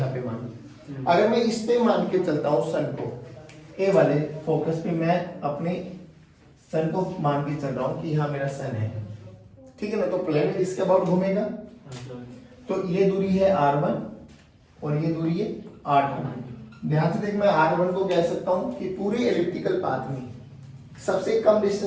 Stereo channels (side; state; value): both; identical; correlation 1.00